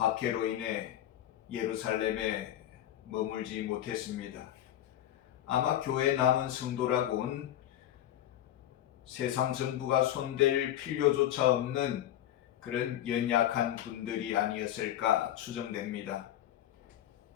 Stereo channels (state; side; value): quieter; right; 12.2 dB